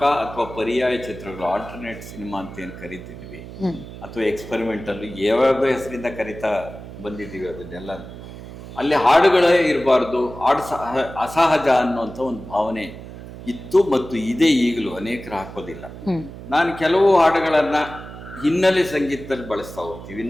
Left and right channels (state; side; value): noise; right; hum, 13 dB below the sound